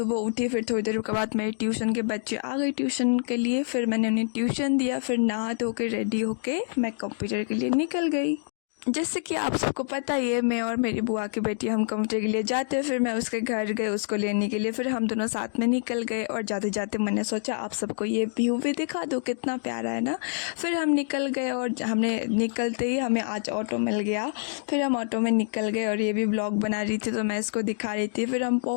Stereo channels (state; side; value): silent; right; digital silence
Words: उठी, फिर थोड़ी देर के बाद मेरे ट्यूशन के बच्चे आ गए ट्यूशन के लिए। फिर मैंने उन्हें ट्यूशन दिया, फिर नहा धो के रेडी होके मैं कंप्यूटर के लिए निकल गई। जैसे कि आप सबको पता ही है, मैं और मेरी बुआ की बेटी हम कंप्यूटर के लिए जाते हैं। फिर मैं उसके घर गई उसको लेने के लिए, फिर हम दोनों साथ में निकल गए। और जाते जाते मैंने सोचा आप सबको ये व्यू भी दिखा दूँ, कितना प्यारा है ना। फिर हम निकल गए और हमने निकलते ही हमें आज ऑटो मिल गया। फिर हम ऑटो में निकल गए और ये भी ब्लॉग बना रही थी तो मैं इसको दिखा रही थी। फिर हम